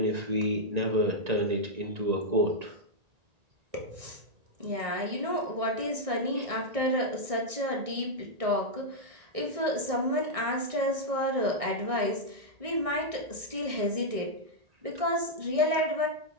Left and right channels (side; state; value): left; late; 1.6 ms